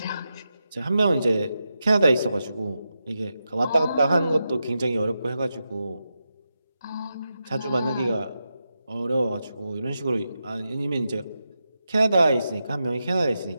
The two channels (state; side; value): inverted; both; correlation -0.88